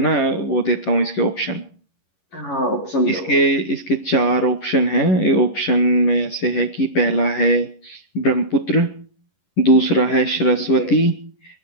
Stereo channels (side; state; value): right; late; 11 ms